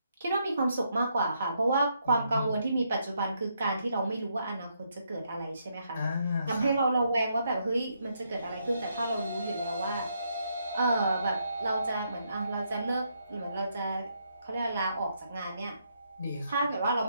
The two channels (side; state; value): both; inverted; correlation -0.77